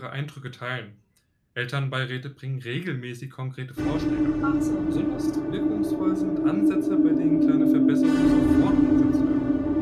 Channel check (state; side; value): identical; both; correlation 1.00